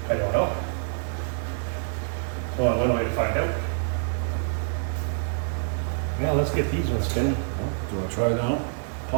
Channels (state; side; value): silent; left; 61 dB below the other